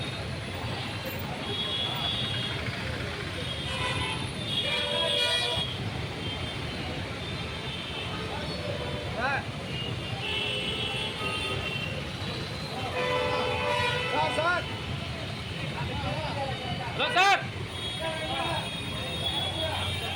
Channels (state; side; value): identical; both; correlation 1.00